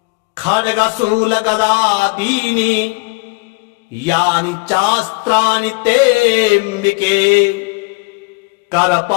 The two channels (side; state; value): right; quieter; 29.7 dB